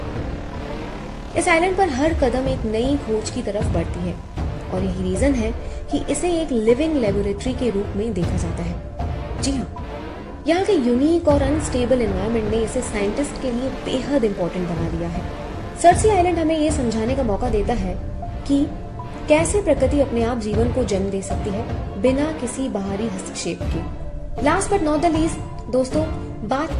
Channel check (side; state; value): both; identical; correlation 1.00